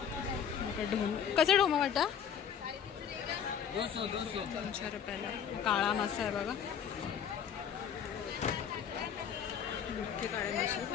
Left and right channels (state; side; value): quieter; right; 8.1 dB